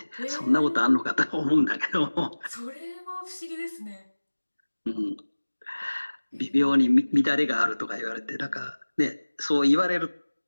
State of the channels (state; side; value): inverted; both; correlation -1.00